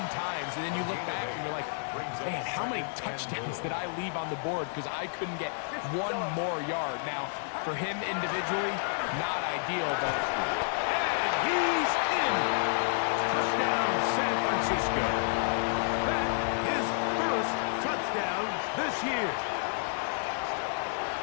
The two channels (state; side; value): silent; right; digital silence